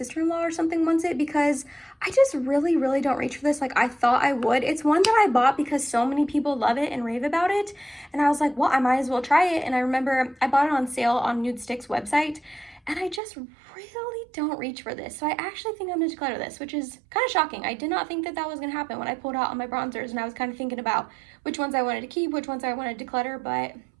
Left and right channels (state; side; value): drops out; left; at 13.2 s